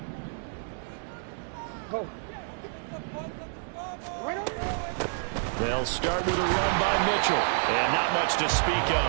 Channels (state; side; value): silent; left; digital silence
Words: They'll start with a run by Mitchell. And not much to speak